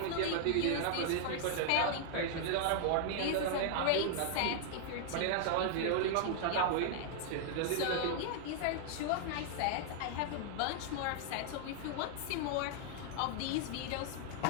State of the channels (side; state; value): both; different; correlation -0.01